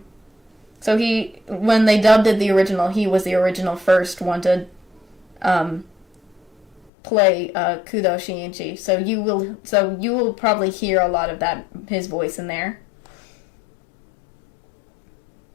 So when they dubbed it the original, he was the original first one to um, play Kudo Shinji. So you will probably hear a lot of that his voice in there.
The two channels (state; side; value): drops out; right; at 6.9 s